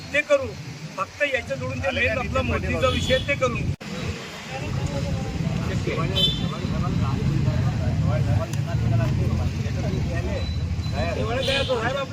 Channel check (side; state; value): both; identical; correlation 1.00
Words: ते करू. फक्त याच्या जोडून ते मेन आपला मोदीचा विषय ते करून घेऊ. एवढं काय होतं, साहेब